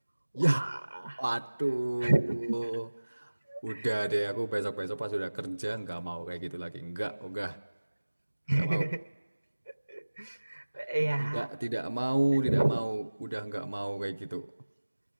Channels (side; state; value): both; inverted; correlation -1.00